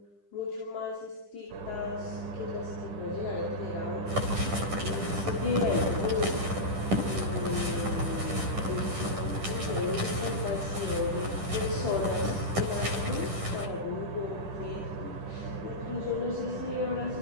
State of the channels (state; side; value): late; left; 10 ms